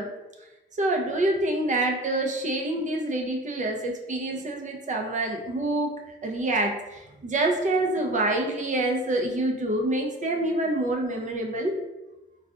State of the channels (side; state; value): both; normal; correlation 0.39